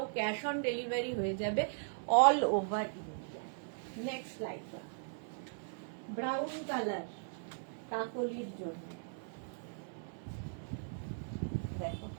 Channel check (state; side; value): silent; left; 53 dB below the other